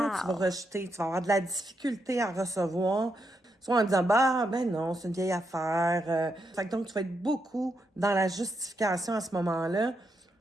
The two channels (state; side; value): normal; both; correlation 0.82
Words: tu vas rejeter. Tu vas avoir de la difficulté à recevoir. Soit en disant, ben non, c'est une vieille affaire. Fait que donc, tu vas être beaucoup dans la justification à ce moment-là